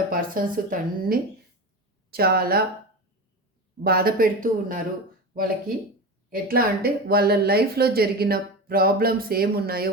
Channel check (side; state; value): both; normal; correlation 0.25